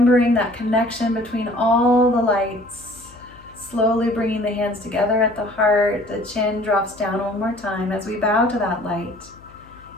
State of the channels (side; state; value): left; noise; hum, 24 dB below the sound